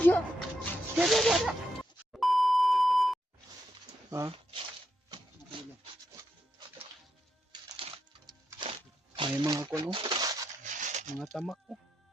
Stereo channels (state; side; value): normal; both; correlation 0.82